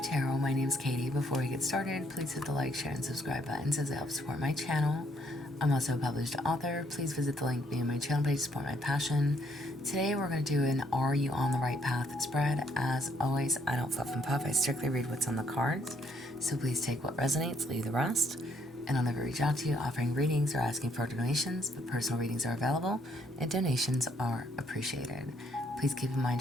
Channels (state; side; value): normal; both; correlation 0.69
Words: Tarot. My name is Katie. Before we get started, please hit the like, share, and subscribe buttons as it helps support my channel. I'm also a published author. Please visit the link via my channel page to support my passion. Today we're going to do an Are You on the Right Path spread. As always, I don't fluff and puff. I strictly read what's on the cards. So please take what resonates, leave the rest. And I'll never reach out to you offering readings or asking for donations, but personal readings are available and donations are appreciated. Please keep in mind